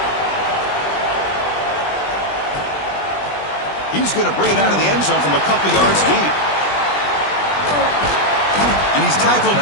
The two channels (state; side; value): late; right; 20 ms